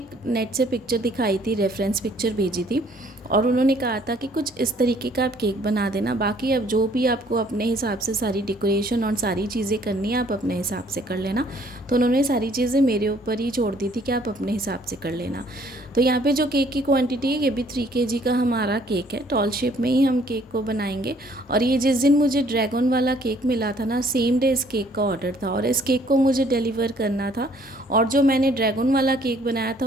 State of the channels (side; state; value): both; normal; correlation 0.61